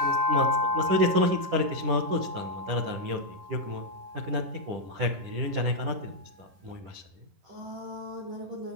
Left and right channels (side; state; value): left; late; 10 ms